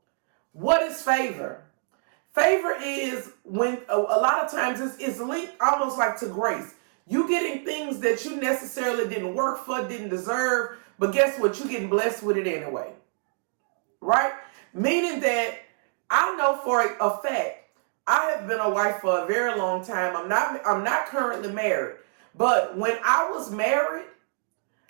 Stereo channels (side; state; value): left; silent; digital silence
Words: What is favor? Favor is when a lot of times it's linked almost like to grace. You getting things that you necessarily didn't work for, didn't deserve, but guess what? You're getting blessed with it anyway. Right? Meaning that I know for a fact, I have been a wife for a very long time. I'm not currently married. But when I was married,